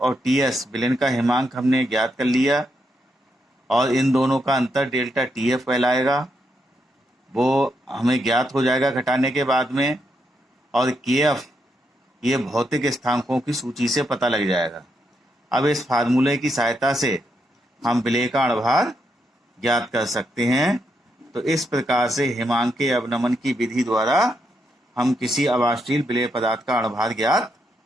और TS विलेन का हिमांक हमने ज्ञात कर लिया, और इन दोनों का अंतर डेल्टा TF कहलाएगा, वो हमें ज्ञात हो जाएगा घटाने के बाद में। और KF ये भौतिक स्थानांकों की सूची से पता लग जाएगा। अब इस फार्मूले की सहायता से हम विलेय का अणुभार ज्ञात कर सकते हैं। तो इस प्रकार से हिमांकीय अवनमन की विधि द्वारा हम किसी अवाष्शील विलेय पदार्थ का अणुभार ज्ञात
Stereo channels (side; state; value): both; normal; correlation 0.80